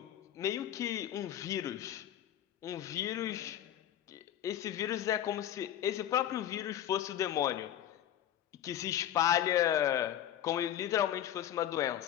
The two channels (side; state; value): right; quieter; 11.2 dB